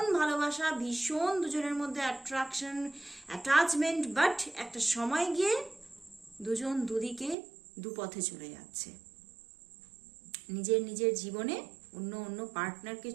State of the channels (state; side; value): drops out; left; at 7.4 s